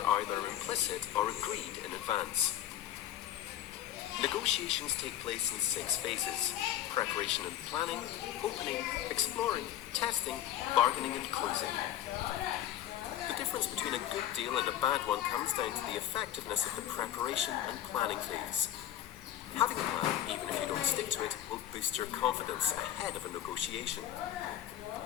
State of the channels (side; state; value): right; quieter; 11.9 dB